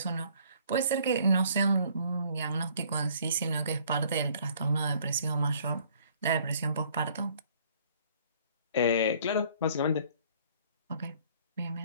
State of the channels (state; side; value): inverted; both; correlation -0.59